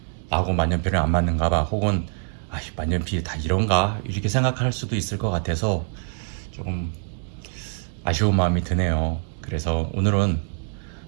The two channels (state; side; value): silent; left; 62 dB below the other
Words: 나하고 만년필은 안 맞는가 봐, 혹은 만년필이 다 이런가, 이렇게 생각할 수도 있을 것 같아서 조금 아쉬운 마음이 드네요. 그래서 오늘은